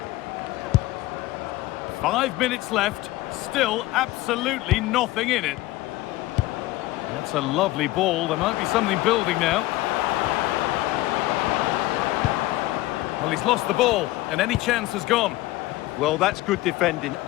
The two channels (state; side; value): quieter; right; 17.9 dB